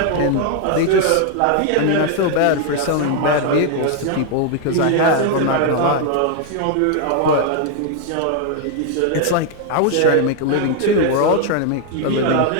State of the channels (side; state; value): both; different; correlation 0.00